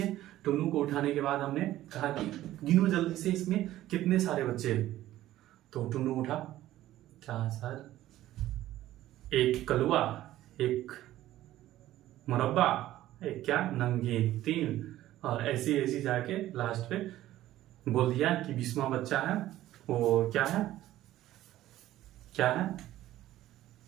टुन्नू को उठाने के बाद हमने कहा कि गिनो जल्दी से इसमें कितने सारे बच्चे हैं। तो टुन्नू उठा, क्या सर, एक कलुआ, एक मुरब्बा, एक क्या नमकीन, 3, और ऐसी ऐसी जाके लास्ट पे बोल दिया कि 20वां बच्चा है वो क्या है, क्या है,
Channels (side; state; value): left; quieter; 14.4 dB